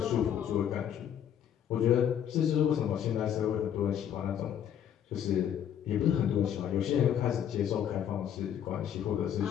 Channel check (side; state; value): right; quieter; 9.5 dB